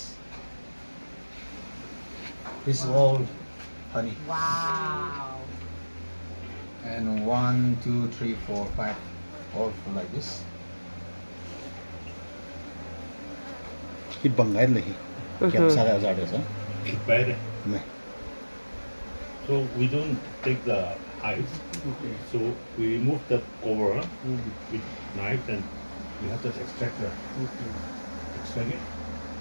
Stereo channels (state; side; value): inverted; both; correlation -1.00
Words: This is all honey. Wow. And 1, 2, 3, 4, 5, all full like this. Hit bangai lagi. Kiam sada ada sa. Bad. Me. So we don't take the hives. So we remove the cover with knife and we have to extract it,